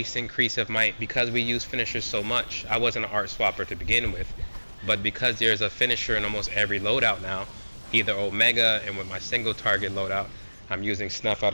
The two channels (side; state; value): both; inverted; correlation -1.00